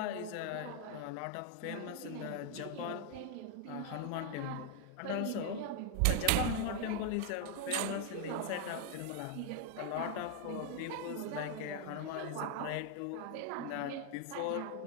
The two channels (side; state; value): both; different; correlation 0.00